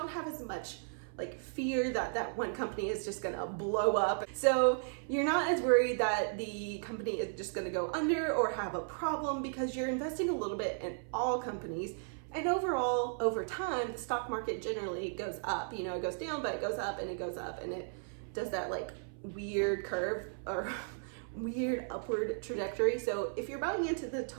have as much like fear that one company is just gonna blow up. So you're not as worried that the company is just gonna go under or have a problem, because you're investing a little bit in all companies. And overall, over time, the stock market generally goes up. You know, it goes down, but it goes up and it goes up, and it does that like weird curve or weird upward trajectory. So if you're buying into the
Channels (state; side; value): silent; left; 54 dB below the other